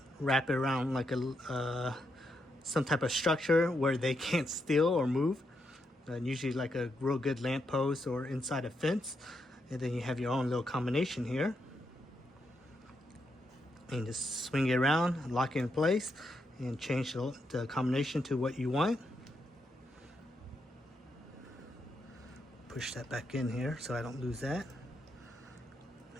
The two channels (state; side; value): normal; both; correlation 0.81